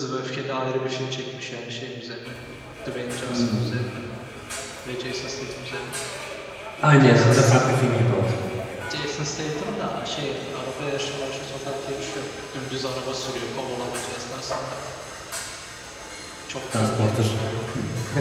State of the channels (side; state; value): both; identical; correlation 1.00